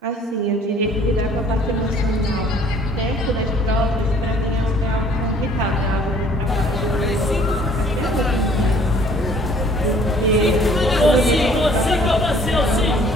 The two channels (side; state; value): both; normal; correlation 0.57